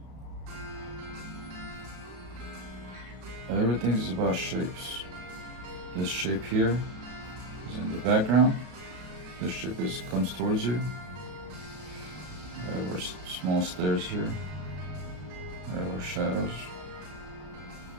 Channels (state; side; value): late; left; 33 ms